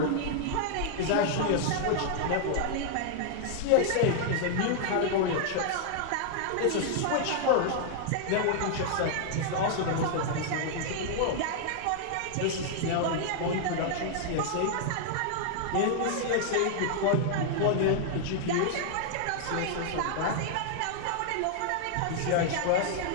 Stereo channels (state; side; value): different; both; correlation -0.01